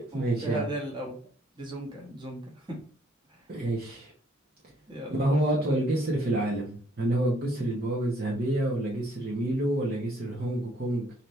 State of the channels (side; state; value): both; normal; correlation 0.66